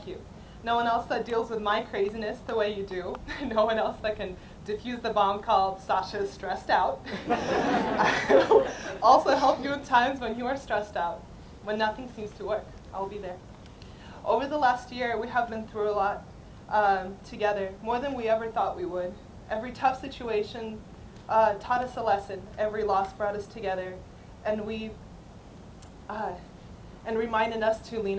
you. No one else that deals with my craziness the way you do. No one else that can diffuse the bomb called Sasha's stressed out. I will also help you in times when you are stressed out, when nothing seems to work. I will be there. Over the last year, we have been through a lot together, more than we ever thought we would. Every tough situation taught us a lesson. Every loss brought us together, and reminded us to lean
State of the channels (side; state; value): both; identical; correlation 1.00